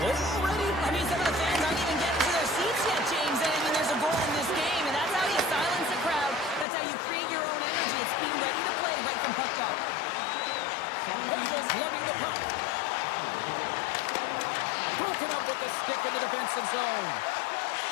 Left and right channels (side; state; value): right; drops out; at 6.7 s